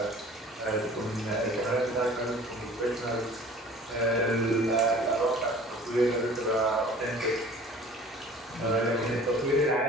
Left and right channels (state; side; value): normal; both; correlation 0.46